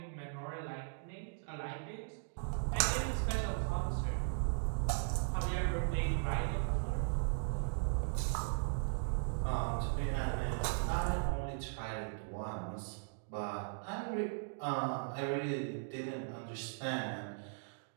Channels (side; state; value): left; silent; digital silence